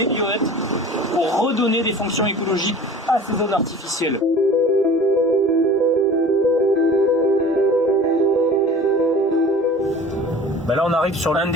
bioètes, pour redonner des fonctions écologiques à ces zones artificielles. Ben là, on arrive sur l'un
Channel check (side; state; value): both; normal; correlation 0.41